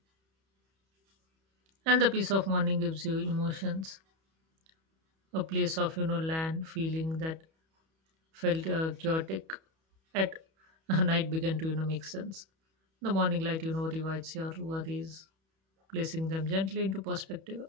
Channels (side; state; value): left; late; 31 ms